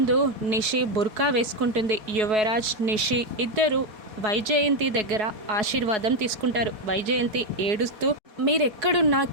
నిషి బుర్కా వేసుకుంటుంది. యువరాజ్, నిషి ఇద్దరు వైజయంతి దగ్గర ఆశీర్వాదం తీసుకుంటారు. వైజయంతి ఏడుస్తూ మీరెక్కడున్నా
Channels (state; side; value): late; left; 4.7 ms